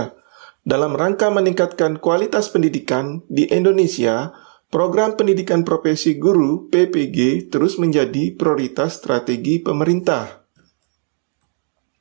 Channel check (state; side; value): silent; left; 63 dB below the other